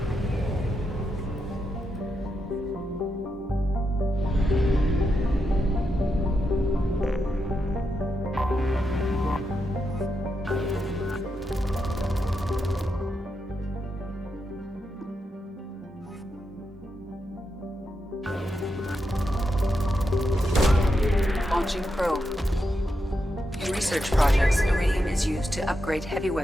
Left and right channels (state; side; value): normal; both; correlation 0.85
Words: Launching probe. In research projects, iridium is used to upgrade heavy